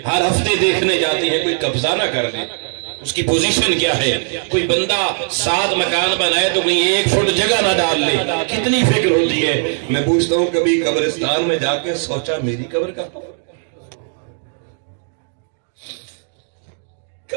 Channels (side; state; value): left; silent; digital silence